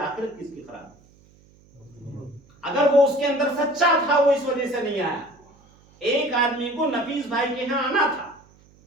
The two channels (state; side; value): noise; right; hum, 29 dB below the sound